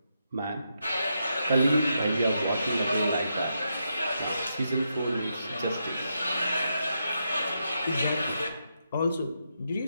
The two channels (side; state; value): both; inverted; correlation -0.82